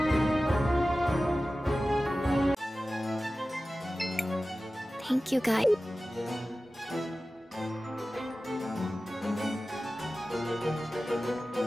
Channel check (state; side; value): normal; both; correlation 0.95